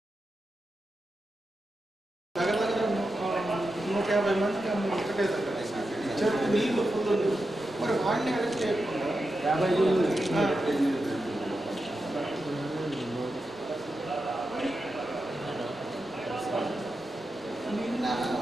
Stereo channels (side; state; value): both; normal; correlation 0.89